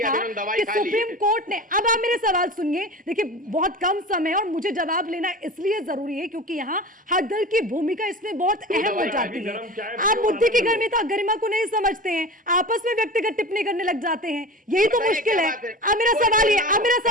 कि सुप्रीम कोर्ट ने, अब आप मेरे सवाल सुनिए, देखिए बहुत कम समय और मुझे जवाब लेना इसलिए जरूरी है क्योंकि यहाँ हर दल की भूमिका इसमें बहुत अहम हो जाती है। आप मुद्दे की गरिमा को नहीं समझते हैं, आपस में व्यक्तिगत टिप्पणी करने लग जाते हैं, यही तो मुश्किल है। अब मेरा सवाल ये, अब मेरा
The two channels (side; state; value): both; normal; correlation 0.33